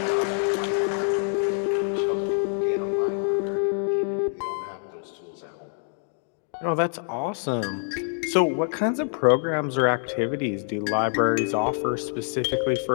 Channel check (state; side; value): silent; right; 61 dB below the other